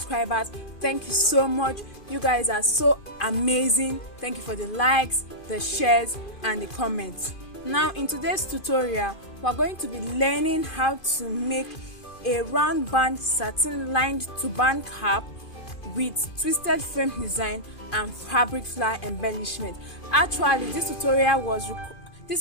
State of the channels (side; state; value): right; late; 2.5 ms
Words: thank you so much. You guys are so amazing. Thank you for the likes, the shares and the comments. Now in today's tutorial, we're going to be learning how to make a round band satin lined turban cap with twisted frame design and fabric flower embellishment. Actually, this tutorial was